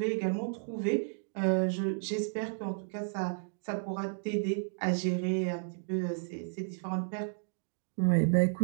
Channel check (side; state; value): left; silent; digital silence